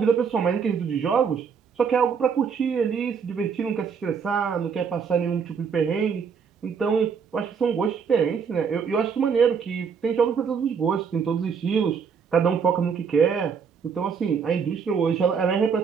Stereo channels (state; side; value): quieter; left; 6.3 dB